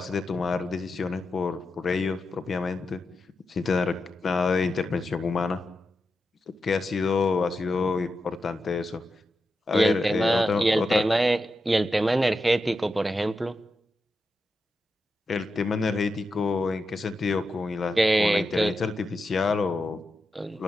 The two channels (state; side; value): normal; both; correlation 0.88